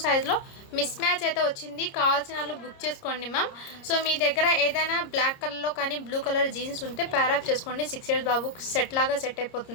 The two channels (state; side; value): late; right; 30 ms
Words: సైజులో మిస్ మ్యాచ్ అయితే వచ్చింది. కావాల్సిన వాళ్ళు బుక్ చేసుకోండి మ్యామ్. సో మీ దగ్గర ఏదైనా బ్లాక్ కలర్లో కానీ బ్లూ కలర్ జీన్స్ ఉంటే ప్యారప్ చేసుకోండి. 6 years బాబు సెట్ లాగా సెట్